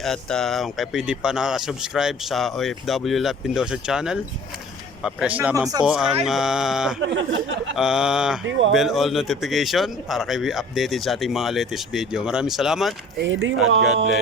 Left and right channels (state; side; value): normal; both; correlation 0.48